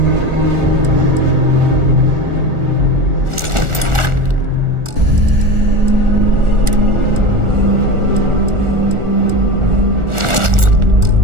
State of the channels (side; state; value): left; late; 1.4 ms